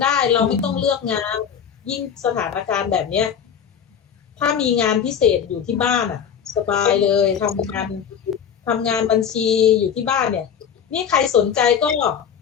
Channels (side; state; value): right; quieter; 7.9 dB